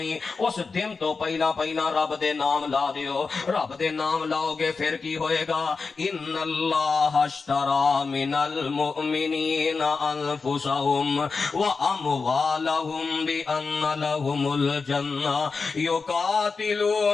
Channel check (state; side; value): quieter; right; 4.6 dB